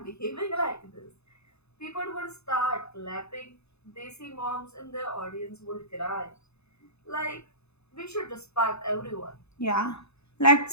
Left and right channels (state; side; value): late; right; 0.80 ms